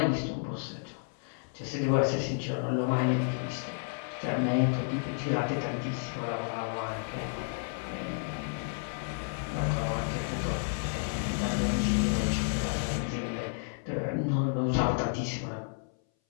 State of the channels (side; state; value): right; silent; 57 dB below the other